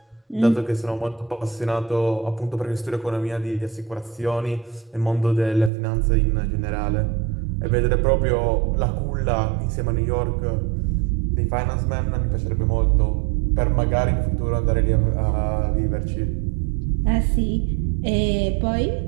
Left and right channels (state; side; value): drops out; left; at 5.7 s